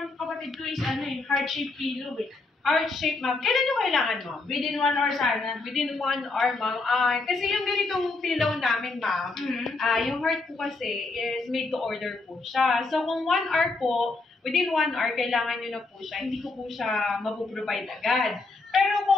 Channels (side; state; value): right; quieter; 3.5 dB